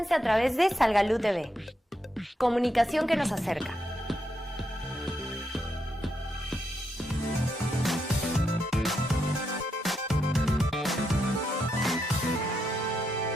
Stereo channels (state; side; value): normal; both; correlation 0.82